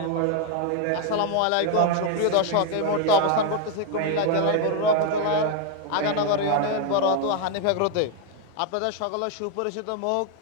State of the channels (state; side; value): different; both; correlation 0.01